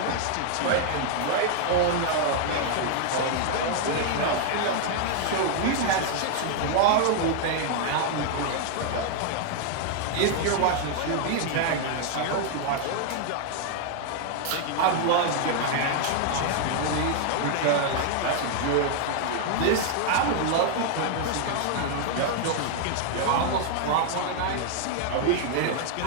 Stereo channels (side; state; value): both; different; correlation 0.00